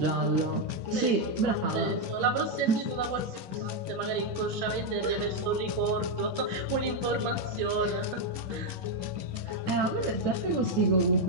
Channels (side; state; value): left; late; 10 ms